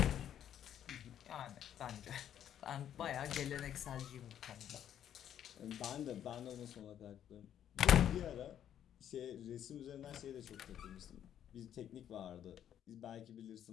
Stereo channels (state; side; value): quieter; right; 10.1 dB